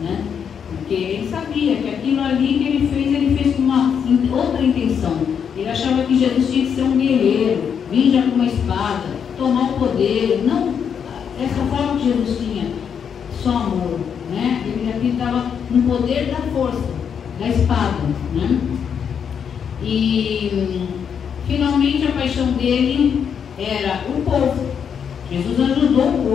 né? Porque ele sabia que aquilo ali que ele fez com uma outra intenção. Ele achava que Jesus tinha que ser um guerreiro, vir já com uma espada, tomar o poder. Não, essa forma que Jesus tinha, só amor, né? Ele acreditava no poder da força, da espada, né? E finalmente a paixão dele era o povo. Jesus ajudou o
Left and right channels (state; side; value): quieter; right; 7.4 dB